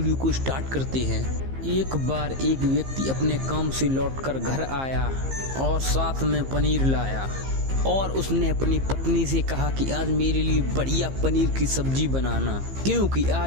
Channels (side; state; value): left; late; 15 ms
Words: को स्टार्ट करते हैं। एक बार एक व्यक्ति अपने काम से लौटकर घर आया और साथ में पनीर लाया और उसने अपनी पत्नी से कहा कि आज मेरे लिए बढ़िया पनीर की सब्जी बनाना, क्योंकि